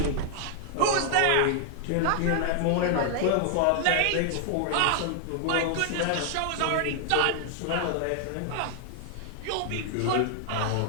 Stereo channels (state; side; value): different; both; correlation 0.00